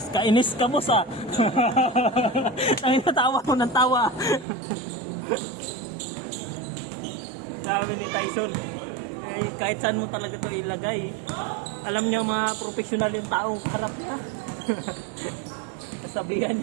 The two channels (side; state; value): left; drops out; at 4.5 s